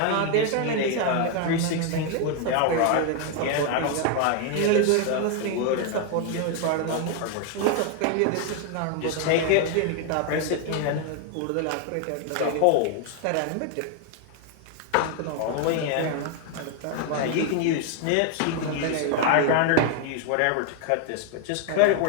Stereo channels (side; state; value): both; different; correlation 0.01